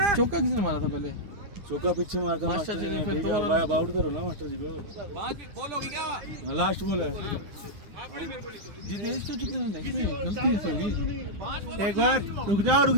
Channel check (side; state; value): left; late; 9.6 ms